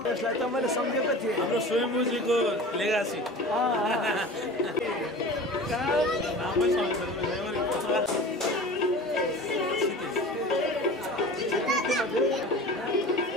त्यसलाई त मैले सम्झेको थिएँ हाम्रो स्वयम्भूजीको लेगासी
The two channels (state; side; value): normal; both; correlation 0.37